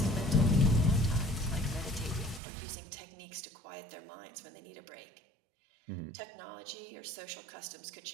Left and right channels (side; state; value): left; drops out; at 2.4 s